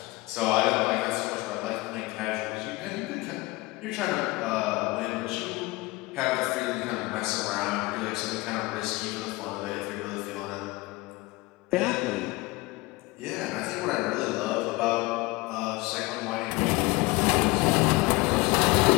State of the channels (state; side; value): quieter; right; 22.2 dB